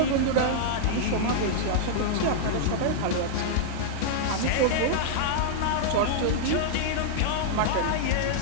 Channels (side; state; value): both; different; correlation -0.02